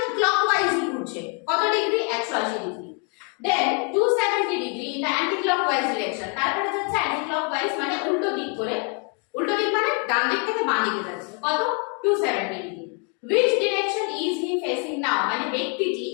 ক্লকওয়াইজই ঘুরছে, কত ডিগ্রি? 180 degree. Then 270 degree in the anti clockwise direction, তারপরে যাচ্ছে অ্যান্টি ক্লকওয়াইজ মানে উল্টো দিক করে, উল্টো দিক মানে ডান দিক থেকে বাঁ দিকে যাচ্ছে, কত? 270 degree. which direction is he facing now, মানে ব্যক্তিটি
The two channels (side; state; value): right; quieter; 38.0 dB